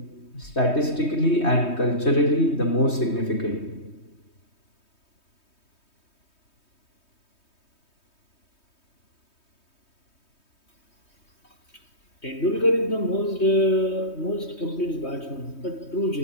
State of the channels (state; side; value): late; right; 3.2 ms